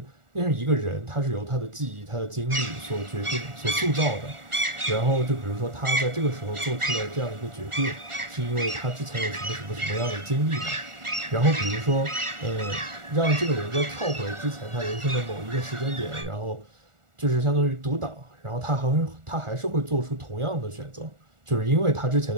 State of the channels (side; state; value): left; late; 1.4 ms